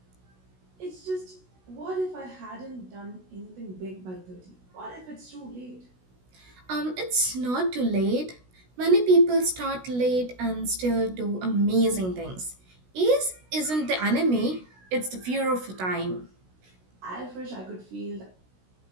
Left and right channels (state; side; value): late; left; 16 ms